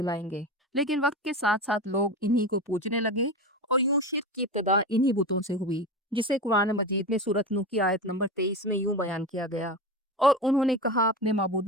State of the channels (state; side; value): normal; both; correlation 0.24